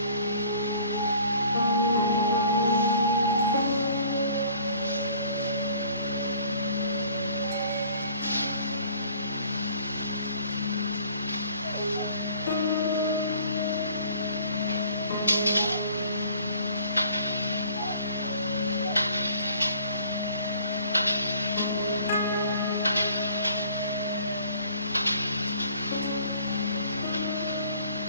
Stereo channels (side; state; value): both; inverted; correlation -0.54